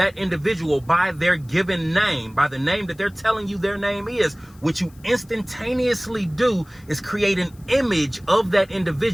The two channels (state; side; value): noise; left; hiss, 29 dB below the sound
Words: individual by their given name, by the name that they're telling you their name is, what you instantaneously do is create an image of that